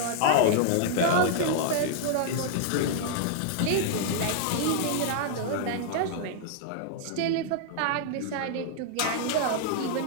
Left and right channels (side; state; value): both; different; correlation -0.01